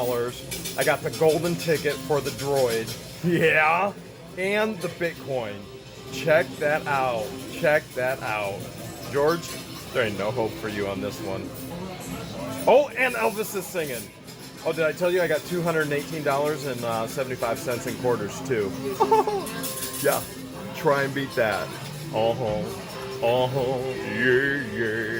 I got the golden ticket for the droid. Yeah, and the Bitcoin. Check that out. Check that out. George, there ain't no hope for you on this one. Oh, and Elvis is singing. Oh, did I tell you I got $218.75 in quarters too? Yeah, try and beat that.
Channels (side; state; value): both; identical; correlation 1.00